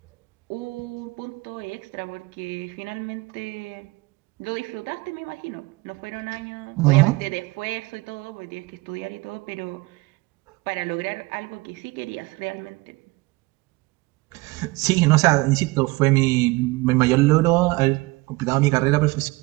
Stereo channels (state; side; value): quieter; left; 22.8 dB